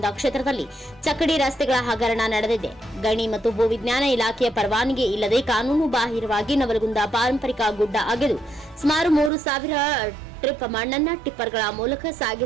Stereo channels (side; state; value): left; drops out; at 9.3 s